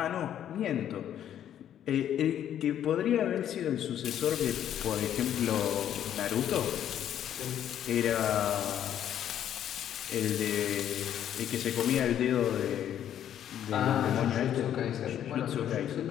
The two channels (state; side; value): quieter; right; 10.4 dB